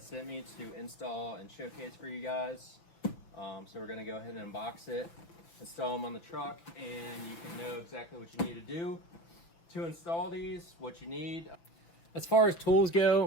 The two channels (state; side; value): late; right; 5.9 ms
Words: sent me to install and showcase for you guys. So we're going to go ahead and unbox it, install them on the truck, and you can know exactly what you need to do to install these, what you need. As far as tools